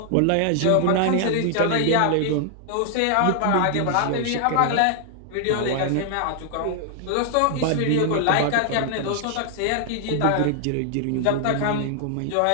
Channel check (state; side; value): different; both; correlation 0.00